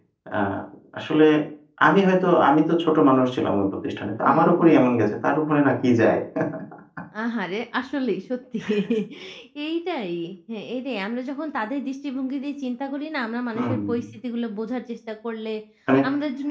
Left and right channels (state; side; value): identical; both; correlation 1.00